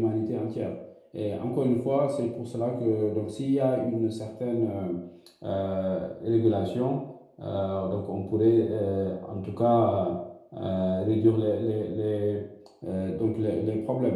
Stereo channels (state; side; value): identical; both; correlation 1.00